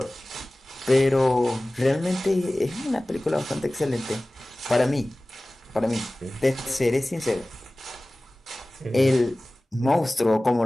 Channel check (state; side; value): normal; both; correlation 0.98